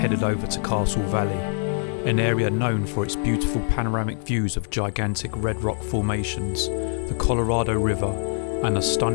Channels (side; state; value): right; silent; 63 dB below the other